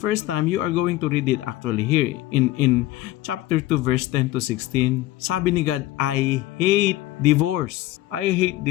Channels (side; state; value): right; quieter; 16.5 dB